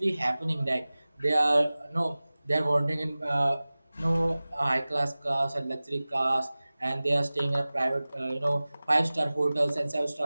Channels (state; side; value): inverted; both; correlation -0.98